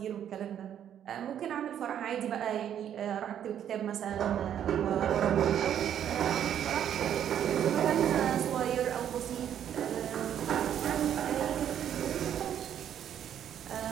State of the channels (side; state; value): left; quieter; 9.8 dB